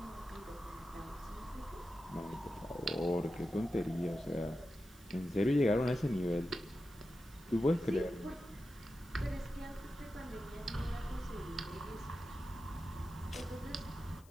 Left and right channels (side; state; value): left; noise; hiss, 26 dB below the sound